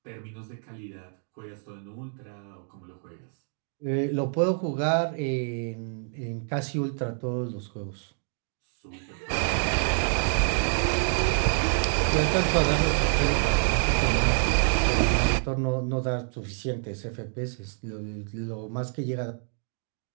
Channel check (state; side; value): silent; left; 60 dB below the other